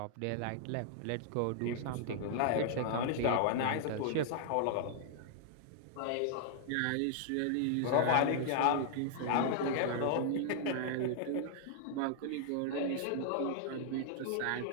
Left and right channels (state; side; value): different; both; correlation -0.01